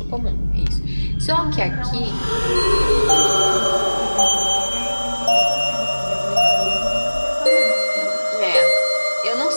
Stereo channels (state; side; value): inverted; both; correlation -1.00